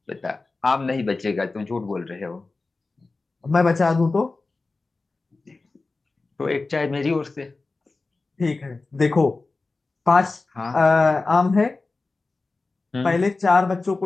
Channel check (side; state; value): right; quieter; 3.6 dB